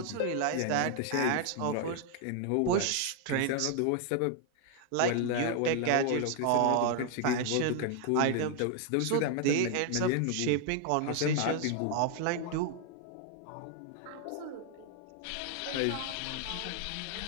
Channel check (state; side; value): different; both; correlation 0.00